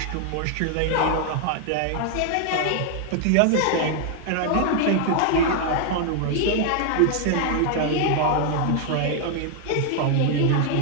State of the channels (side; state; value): both; different; correlation 0.00